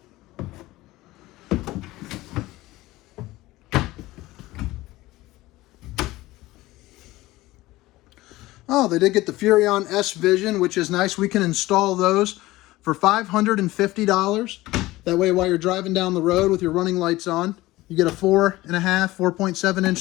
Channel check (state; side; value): quieter; right; 18.3 dB